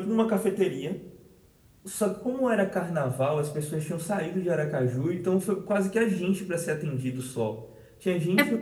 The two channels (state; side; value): identical; both; correlation 1.00